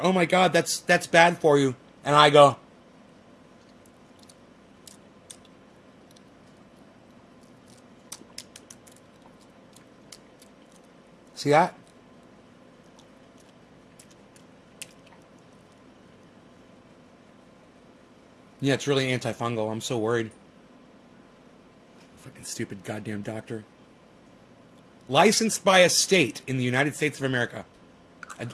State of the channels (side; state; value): both; identical; correlation 1.00